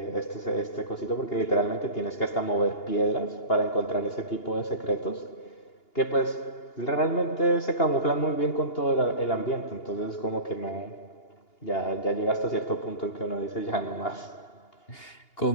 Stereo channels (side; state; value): right; late; 2.8 ms